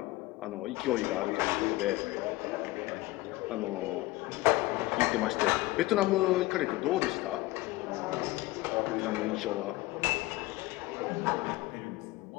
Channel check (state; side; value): quieter; right; 19.2 dB